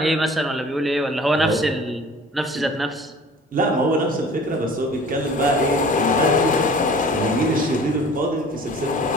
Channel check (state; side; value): normal; both; correlation 0.46